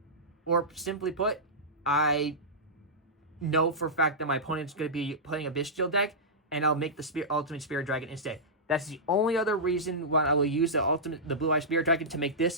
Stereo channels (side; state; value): both; normal; correlation -0.14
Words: or simply put, I know for a fact that my opponent's going to be playing a Bestial deck, and I'll make the Ultimate Spirit Dragon instead. That's the only other reason why I will use the Blue Eyes Spirit Dragon to make this